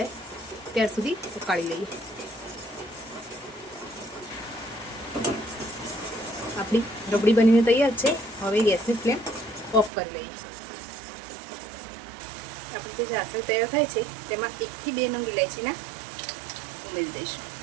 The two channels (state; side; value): drops out; left; at 9.9 s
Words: ત્યાર સુધી ઉકાળી લઈએ। આપણી રબડી બનીને તૈયાર છે। હવે ગેસની ફ્લેમ ઓફ કરી લઈએ। આપણી જે ચાસણી તૈયાર થાય છે તેમાં 1 થી 2 નંગ ઇલાયચીના ઉમેરી દઈશું,